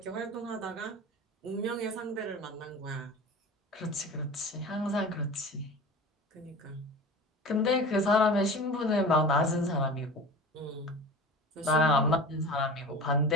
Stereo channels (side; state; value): both; normal; correlation 0.35